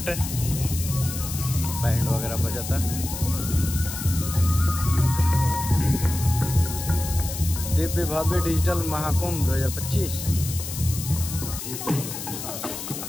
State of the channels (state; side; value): noise; left; hiss, 8 dB below the sound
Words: बैंड वगैरह बजाता। दिव्य भव्य डिजिटल महाकुंभ 2025।